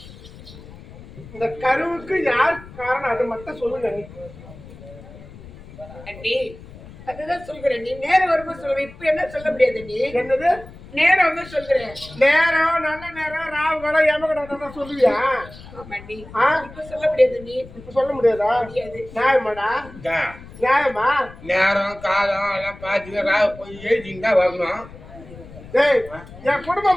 இந்த கருவுக்கு யார் காரணம் அது மட்டும் சொல்லுங்க நீ. அண்ணி அதுதான் சொல்கிறேன் நீ நேரம் வரும்போது சொல்லுவேன் இப்ப என்ன சொல்ல முடியாது நீ என்னது நேரம் வந்து சொல்கிறேன் நேரம் நல்ல நேரம் ராவு கடை எமகடை சொல்லுவியா? ஆமாண்டி ஆ இப்ப சொல்ல முடியாது நீ இப்ப சொல்ல முடியாதா? முடியாது. நியாயமாடா? நியாயமா? நேரம் காலம் எல்லாம் பார்த்து ராவ போய் எழுதிங்க தான் வரணும். டேய் என்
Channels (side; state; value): left; noise; rumble, 18 dB below the sound